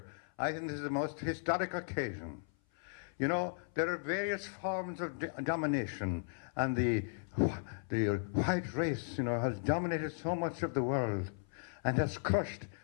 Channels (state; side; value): silent; right; 54 dB below the other